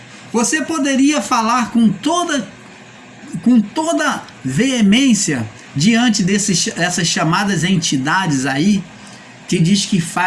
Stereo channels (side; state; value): both; identical; correlation 1.00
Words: Você poderia falar com toda veemência diante dessas chamadas entidades aí, que diz que